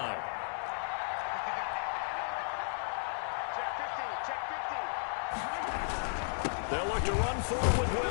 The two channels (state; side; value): silent; right; digital silence